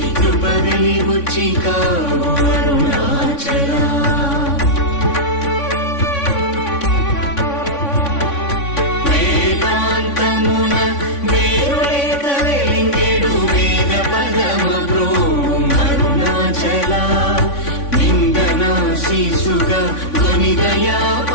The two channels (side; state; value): right; late; 3.5 ms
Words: కృప వెలిగుచ్చి కావు అరుణాచల వేదాంతమున వేరులేక వెలింగెడు వేద పదమ బ్రోం అరుణాచల నిందనా శిశుగా కొనిదయా